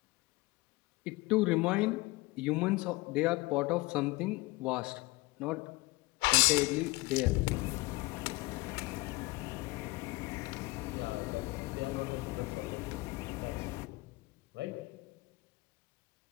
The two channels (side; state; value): right; quieter; 22.7 dB